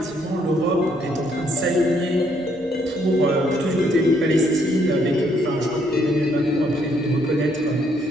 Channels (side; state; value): both; normal; correlation 0.70